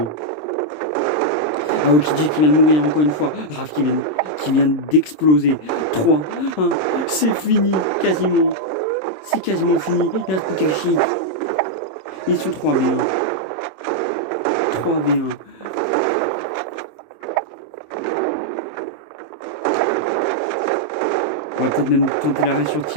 Aokiji qui vient de mourir encore une fois. Raph qui vient d'exploser. 3, 1, c'est fini quasiment. C'est quasiment fini. Il reste plus qu'Ashi. Ils sont 3v1. 3v1. On va peut-être même tenter l'arrêt sur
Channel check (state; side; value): late; right; 26 ms